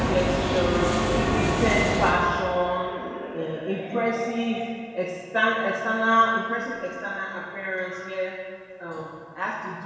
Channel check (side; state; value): both; identical; correlation 1.00